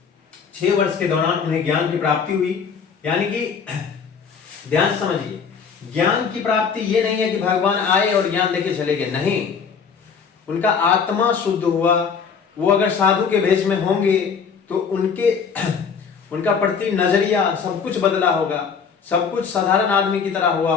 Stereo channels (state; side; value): quieter; right; 6.2 dB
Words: 6 वर्ष के दौरान उन्हें ज्ञान की प्राप्ति हुई। यानी कि ध्यान समझिए, ज्ञान की प्राप्ति ये नहीं है कि भगवान आए और ज्ञान देके चले गए, नहीं। उनका आत्मा शुद्ध हुआ। वो अगर साधु के भेष में होंगे तो उनका प्रति नजरिया सब कुछ बदला होगा, सब कुछ साधारण आदमी की तरह हुआ